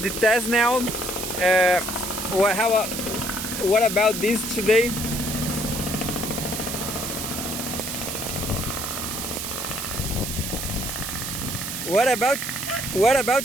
test now. What about this today? What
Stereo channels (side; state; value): right; noise; hiss, 5 dB below the sound